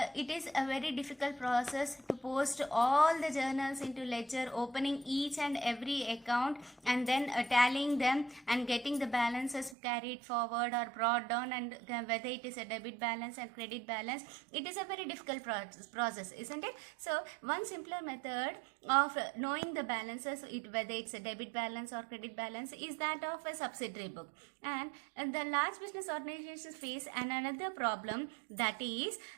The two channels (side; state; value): left; drops out; at 9.8 s